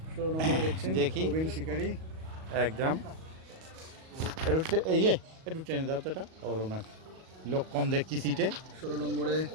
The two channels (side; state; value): left; late; 38 ms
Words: 16 নম্বরে দেখছেন দেখি। প্রবীণ শিকারি। একদম একটু টেনে দাও তো, এটা ওর ওনার লোক কম দেখছি সিটে। 16 নম্বরে